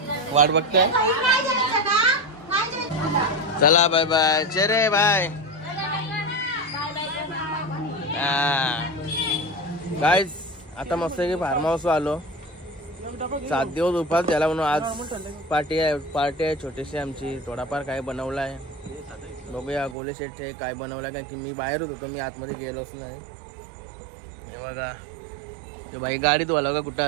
वाट बघते. चला बाय बाय. चेरे बाय. गाईज आता मस्त की फार्म हाऊस आलो. 7 दिवस उपास झाला म्हणून आज पार्टी आहे छोटीशी आमची. थोडाफार काय बनवला आहे बघूया. गोले शेटचे काय बनवलाय कारण की मी बाहेरच होतो. मी आतमध्ये गेलोच नाही. हे बघा ते भाई गाडीत वाला का कुठं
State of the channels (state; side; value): drops out; left; at 20.0 s